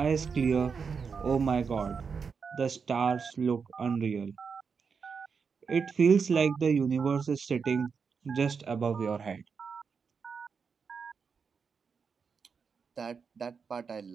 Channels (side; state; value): left; quieter; 5.8 dB